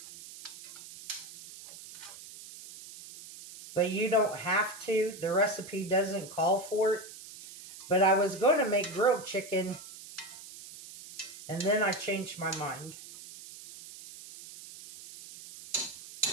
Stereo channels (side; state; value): right; noise; hiss, 15 dB below the sound